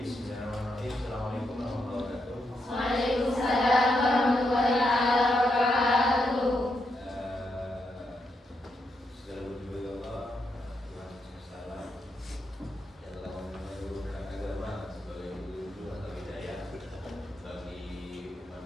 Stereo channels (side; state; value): both; normal; correlation 0.82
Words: Assalamualaikum warahmatullahi wabarakatuh. Waalaikumsalam warahmatullahi wabarakatuh. Segala puji bagi Allah, Tuhan semesta alam, yang telah menurunkan agama sebagai petunjuk atau hidayah bagi umat